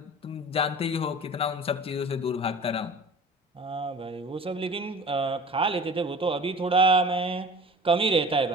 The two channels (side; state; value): both; normal; correlation 0.41